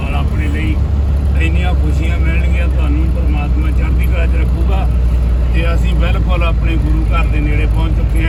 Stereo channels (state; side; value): identical; both; correlation 1.00